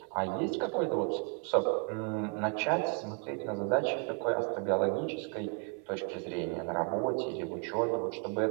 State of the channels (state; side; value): quieter; left; 36.9 dB